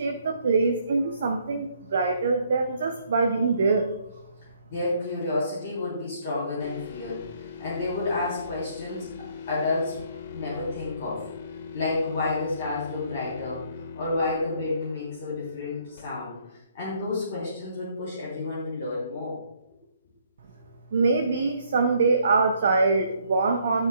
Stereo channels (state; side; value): inverted; both; correlation -0.67